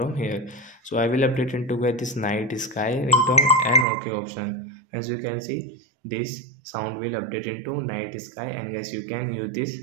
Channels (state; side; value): drops out; left; at 3.9 s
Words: here. So I will update into guys this night sky ringtone and okay option. As you can see, this sound will update into night sky, and guys you can use this